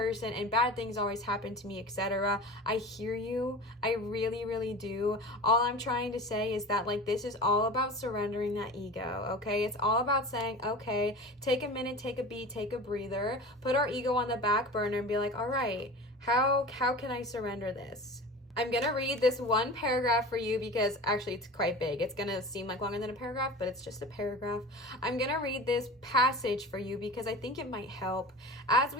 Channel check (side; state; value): both; normal; correlation 0.35